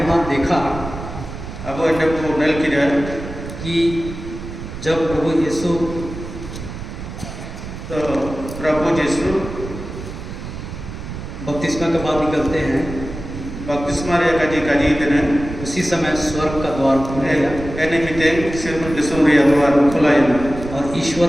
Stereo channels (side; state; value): right; noise; rumble, 10 dB below the sound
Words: देखा अब इन्हें को नल की कि जब प्रभु यीशु तो प्रभु यीशु बपतिस्मा के बाद निकलते हैं, बपतिस्मा रे काजी देने उसी समय स्वर्ग का द्वार खुल गया एने मिते सिर्फ दिसुम रे द्वार खुला है और ईश्वर